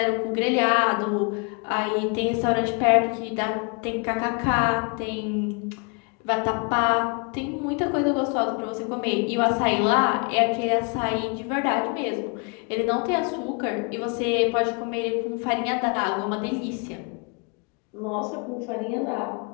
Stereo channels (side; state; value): right; quieter; 34.7 dB